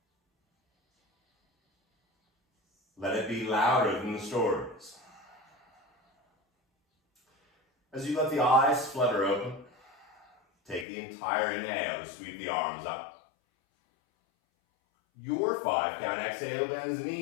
Let it be louder than the stories. As you let the eyes flutter open, take the entire inhale to sweep the arms up. Your 5-count exhale bends the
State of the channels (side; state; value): right; drops out; at 10.9 s